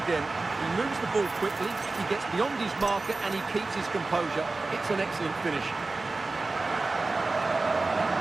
He moves the ball quickly, he gets beyond his marker and he keeps his composure. It's an excellent finish.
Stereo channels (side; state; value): left; quieter; 3.5 dB